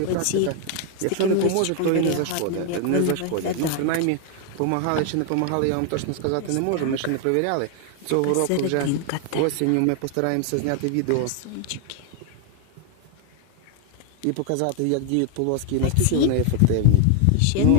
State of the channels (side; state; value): both; different; correlation 0.00